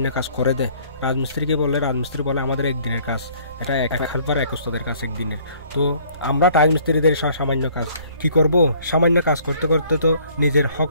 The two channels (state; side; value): inverted; both; correlation -0.58